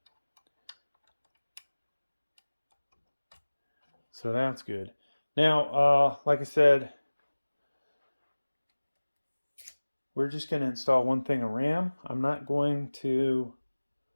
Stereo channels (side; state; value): both; inverted; correlation -1.00